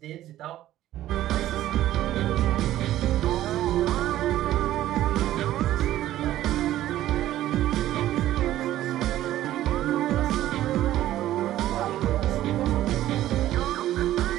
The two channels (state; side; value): quieter; left; 13.7 dB